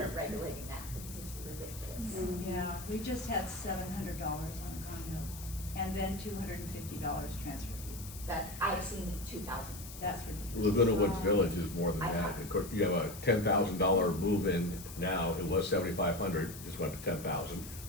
regulating that, because it's ridiculous. Yeah, we just had $700 on condo, and then $250 transfer fee. That's, I've seen 2,000. That's ridiculous. Laguna Woods Village is more than I that. know. Of course, you have a $10,000 move-in now, it was $7,500, just went to $10,000,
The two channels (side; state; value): left; noise; hiss, 13 dB below the sound